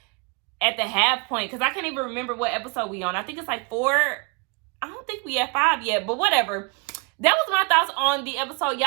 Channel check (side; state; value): left; quieter; 32.8 dB